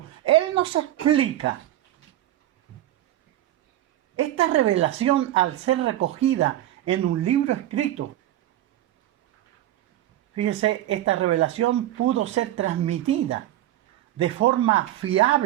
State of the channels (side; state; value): left; quieter; 13.7 dB